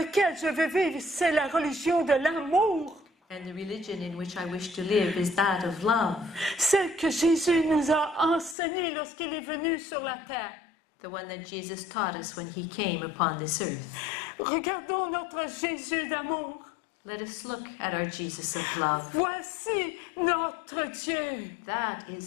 je veux vivre, c'est la religion de l'amour. And the religion in which I wish to live is that of love. Celle que Jésus nous a enseignée lorsqu'il est venu sur la terre. The one that Jesus taught us when he came upon this earth. Regardons notre Jésus d'amour. Let us look at our Jesus of love. Voici notre Dieu. That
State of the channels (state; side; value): drops out; right; at 8.6 s